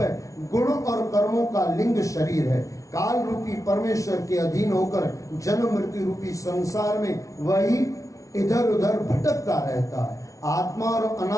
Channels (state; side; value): late; right; 0.16 ms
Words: गुण और कर्मों का लिंग शरीर है। काल रूपी परमेश्वर के अधीन होकर जन्म मृत्यु रूपी संसार में वही इधर उधर भटकता रहता है। आत्मा और